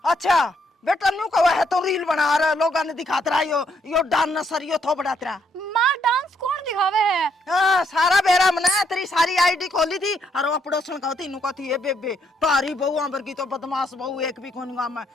अच्छा बेटा न्यू कहा है तो रील बना रहा लोगों ने दिखाता रहा यो डांस नसरियो थो बढ़ाता रहा माँ डांस कौन दिखावे है हाँ सारा बेरा मना तेरी सारी आईडी खोली थी और वो पड़ोसन कहती नु कहती है बेबे तारी बहू अंबर की तो बदमाश बहू एक भी कौन गाँव में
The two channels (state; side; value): normal; both; correlation 0.73